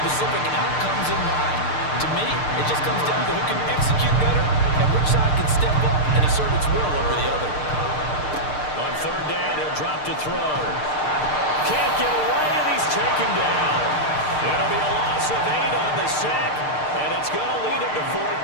outcomes in mind. To me, it just comes down to who can execute better and which side can step up and assert its will over the other. On third down, he'll drop to throw. Can't get away, and he's taken down. It'll be a loss of 8 on the sack, and it's going to lead him to 4th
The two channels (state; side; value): late; right; 6.6 ms